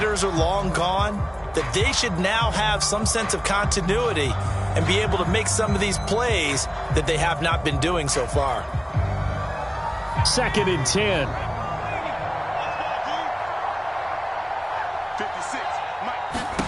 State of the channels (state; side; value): identical; both; correlation 1.00